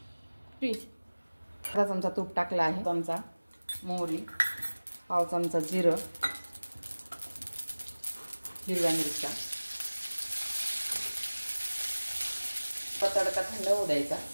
अर्धा चमचा तूप टाकला आहे, चमचा मोहरी, पाव चमचा जिरं, हिरव्या मिरच्या। तडका थंड होऊ द्यायचा,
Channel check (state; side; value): inverted; both; correlation -1.00